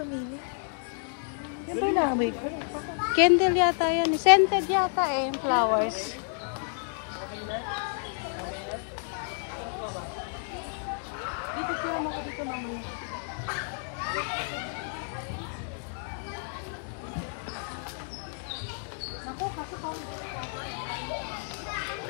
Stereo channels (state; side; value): silent; right; 58 dB below the other